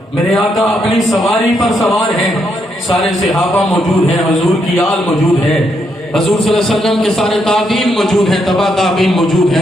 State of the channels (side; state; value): both; normal; correlation 0.78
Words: میرے آقا اپنی سواری پر سوار ہیں، سارے صحابہ موجود ہیں، حضور کی آل موجود ہے، حضور صلی اللہ علیہ وسلم کے سارے تابعین موجود ہیں، تبع تابعین موجود